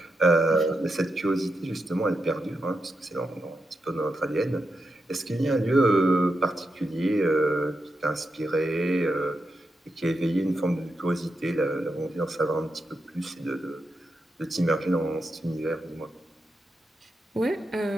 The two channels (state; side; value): normal; both; correlation 0.86